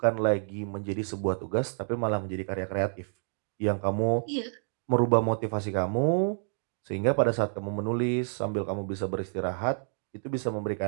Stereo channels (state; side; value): silent; left; digital silence